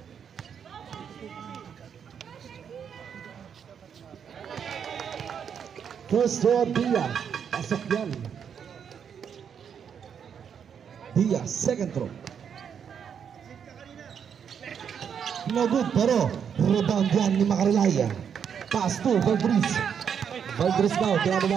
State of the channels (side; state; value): left; quieter; 7.6 dB